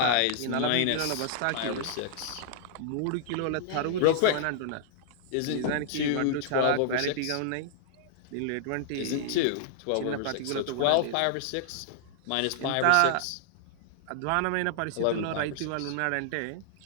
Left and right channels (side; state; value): both; different; correlation -0.01